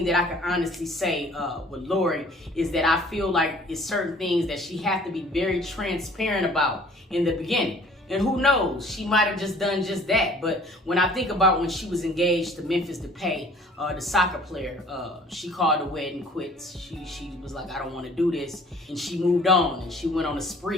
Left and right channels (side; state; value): both; normal; correlation 0.53